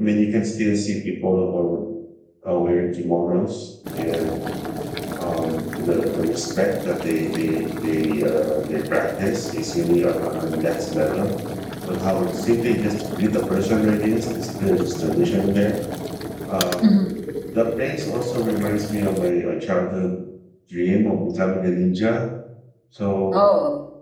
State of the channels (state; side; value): identical; both; correlation 1.00